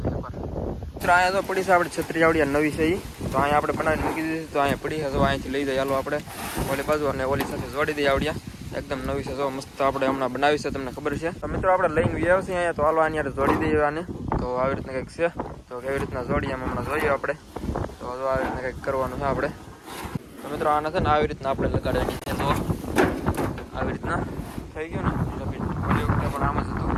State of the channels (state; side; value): identical; both; correlation 1.00